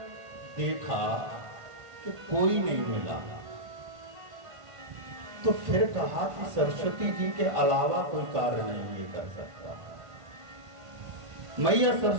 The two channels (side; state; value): left; late; 1.5 ms